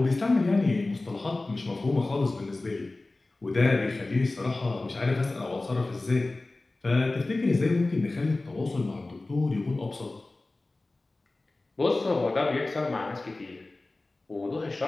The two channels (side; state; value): right; quieter; 3.1 dB